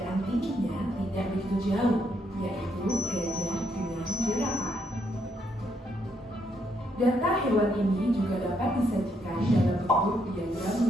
tingginya tidak begitu jauh, yaitu gajah dengan jerapah. Data hewan ini juga dapat disajikan dalam bentuk diagram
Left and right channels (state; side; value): normal; both; correlation 0.75